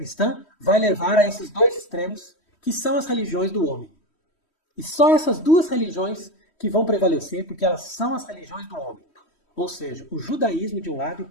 vai levar a esses dois extremos, que são as religiões do homem. E só essas duas religiões que vão prevalecer, porque elas são as religiões do homem. Ou seja, o judaísmo de um lado e o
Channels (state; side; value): late; right; 3.1 ms